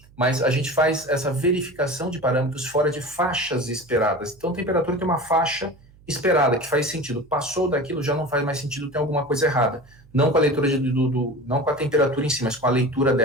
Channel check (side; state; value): right; noise; hum, 26 dB below the sound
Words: Mas a gente faz essa verificação de parâmetros fora de faixas esperadas. Então, a temperatura tem uma faixa esperada, que faz sentido. Passou daquilo, já não faz mais sentido, tem alguma coisa errada. Não com a leitura, não com a temperatura em si, mas com a leitura